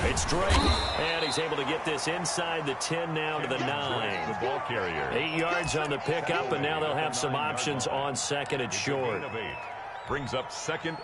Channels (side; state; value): both; identical; correlation 1.00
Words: It's Drake, and he's able to get this inside the 10 now to the 9. The ball carrier. 8 yards on the pickup, and now they'll have some options on 2nd and short. Gain of 8. Brings up 2nd